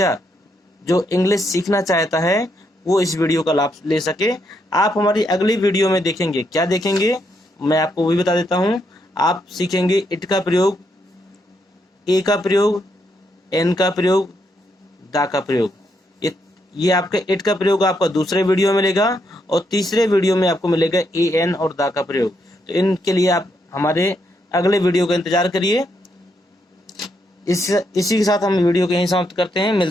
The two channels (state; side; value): normal; both; correlation 0.78